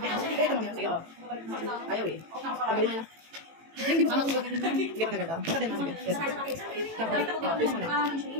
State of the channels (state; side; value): late; left; 18 ms